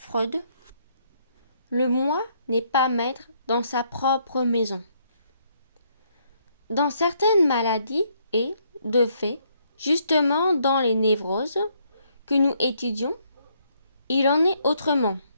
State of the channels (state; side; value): inverted; both; correlation -0.71